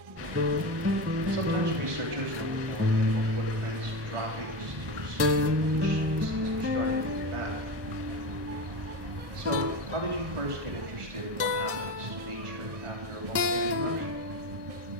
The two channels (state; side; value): late; left; 1.2 ms